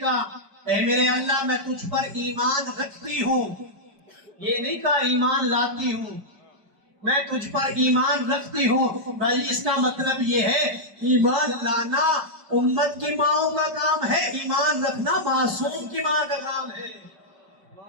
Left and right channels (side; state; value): left; late; 5.1 ms